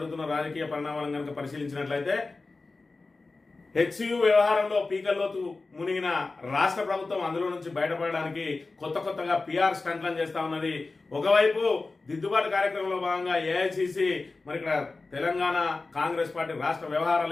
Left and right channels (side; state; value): right; quieter; 3.6 dB